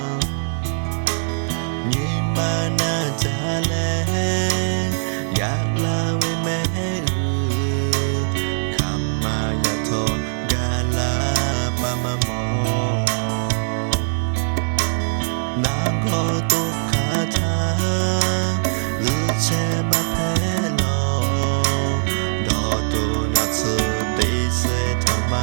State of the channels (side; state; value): left; silent; 56 dB below the other